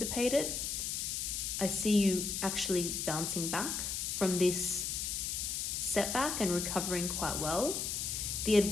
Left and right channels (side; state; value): left; noise; hiss, 2 dB below the sound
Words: I see you actually bouncing back from this setback and recovering quite well. The